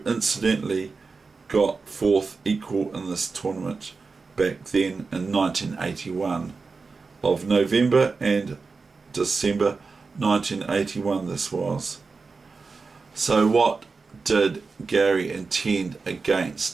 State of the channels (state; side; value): quieter; left; 4.4 dB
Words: incidentally got fourth equal in this tournament back then in 1981, of November and December 1981 this was. So what did Garry intend